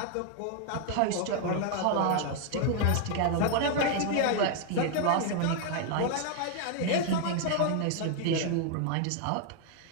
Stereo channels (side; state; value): both; different; correlation 0.00